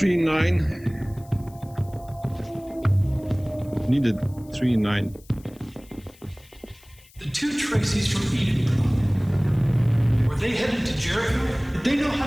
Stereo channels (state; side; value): noise; left; hiss, 26 dB below the sound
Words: nine. Needed 3-9. The two Tracys from Eden. Were they headed to Jericho? Did they know how